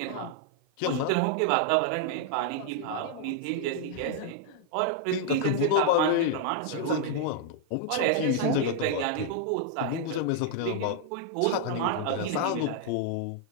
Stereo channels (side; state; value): both; different; correlation -0.01